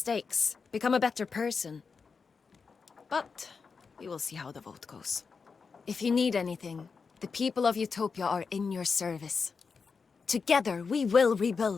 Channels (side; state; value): right; quieter; 5.2 dB